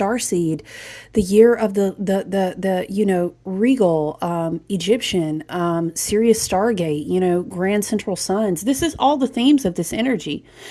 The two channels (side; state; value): both; identical; correlation 1.00